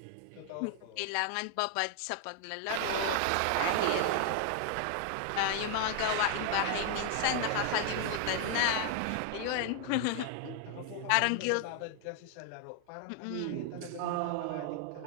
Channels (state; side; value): different; both; correlation 0.00